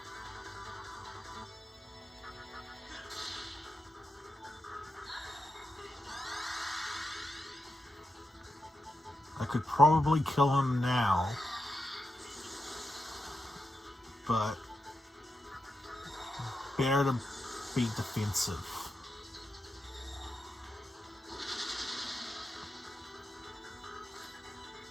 I could probably kill him now, but better to be defensive.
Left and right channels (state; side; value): normal; both; correlation 0.87